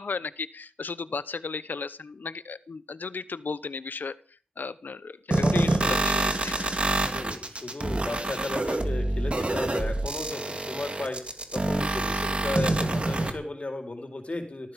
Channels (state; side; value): normal; both; correlation 0.81